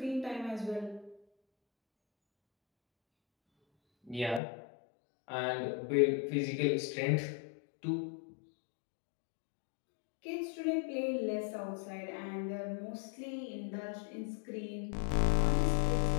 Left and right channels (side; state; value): right; drops out; at 4.4 s